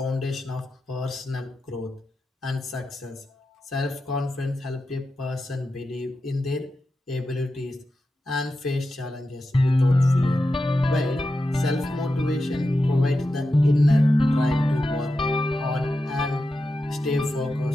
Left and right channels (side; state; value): both; normal; correlation 0.90